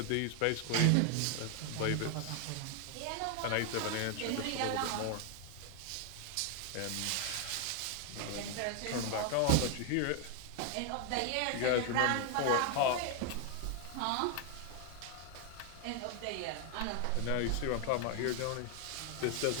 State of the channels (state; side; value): different; both; correlation 0.00